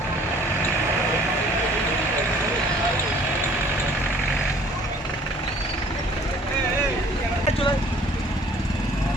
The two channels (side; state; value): both; normal; correlation 0.54